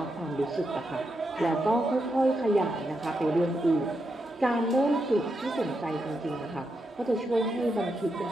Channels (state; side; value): normal; both; correlation 0.84